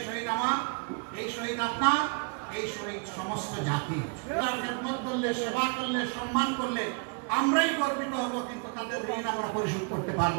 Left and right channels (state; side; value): quieter; left; 37.0 dB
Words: শহীদ আমার, এই শহীদ আপনার, এই শহীদ সমস্ত জাতি। তার খেদমত করলে, সেবা করলে, সম্মান করলে আমরাই গর্বিত হব, কিন্তু তাদের ঋণ আমরা পরিশোধ করতে